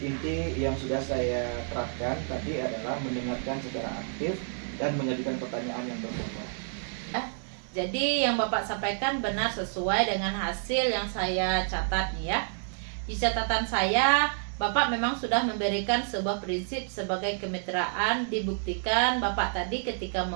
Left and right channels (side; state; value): left; silent; digital silence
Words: yang sudah saya terapkan tadi adalah mendengarkan secara aktif dan mengajukan pertanyaan yang berbobot. Jadi yang Bapak sampaikan benar sesuai dengan hasil yang saya catat nih ya. Di catatan saya, Bapak memang sudah memberikan sebuah prinsip sebagai kemitraan. Dibuktikan Bapak tadi ketika